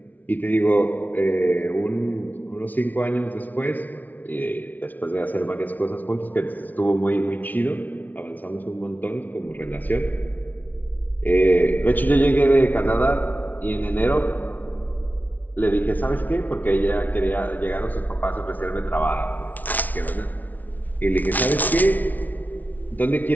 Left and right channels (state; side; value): late; right; 0.078 ms